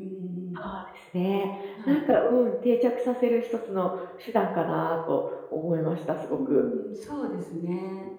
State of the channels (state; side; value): identical; both; correlation 1.00